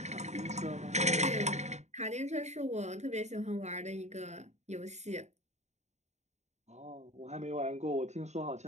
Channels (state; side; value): late; left; 0.33 ms